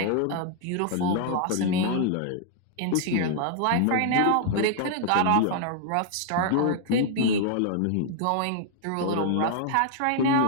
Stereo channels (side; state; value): both; different; correlation -0.01